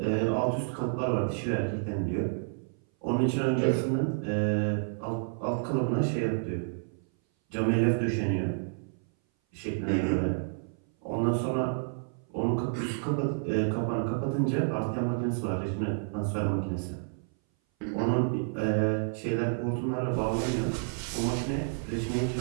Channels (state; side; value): silent; left; 57 dB below the other